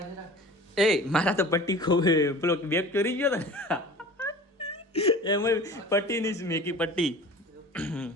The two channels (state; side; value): normal; both; correlation 0.40